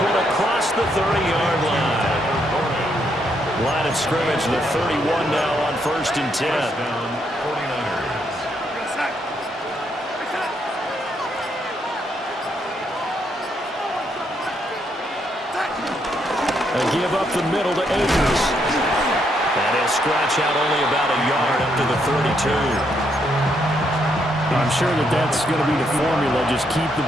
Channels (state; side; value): normal; both; correlation 0.75